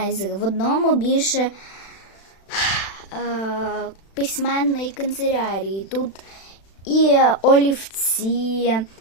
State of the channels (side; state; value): right; late; 36 ms